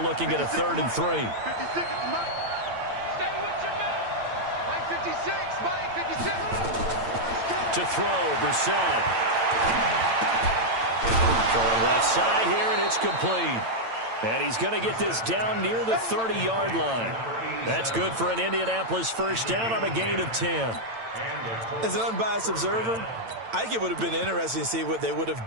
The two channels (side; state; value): left; late; 8.9 ms